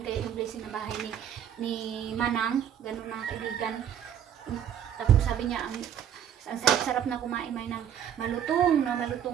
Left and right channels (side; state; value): left; quieter; 9.4 dB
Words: kaya yung blessing na bahay ni Manang? Ganun mga kaibigan. Tapos sabi niya, ang sarap na kumain ng malutong